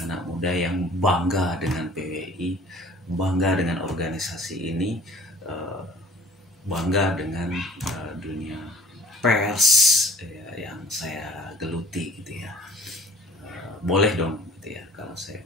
yang bangga dengan PWI, bangga dengan organisasi ini, bangga dengan dunia pers ya, yang saya geluti gitu ya. Boleh dong gitu ya kalau saya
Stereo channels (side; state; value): both; normal; correlation 0.51